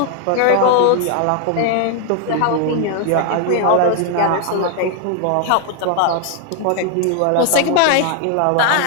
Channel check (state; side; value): different; both; correlation 0.00